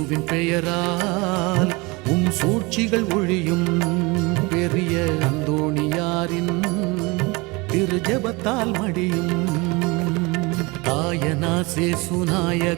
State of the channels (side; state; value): left; quieter; 25.7 dB